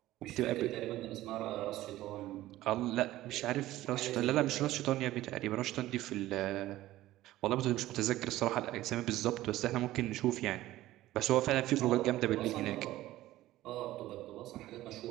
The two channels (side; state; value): left; quieter; 15.6 dB